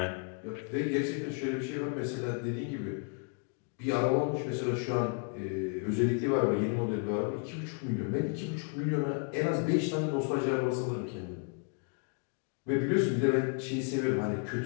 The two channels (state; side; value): quieter; right; 38.7 dB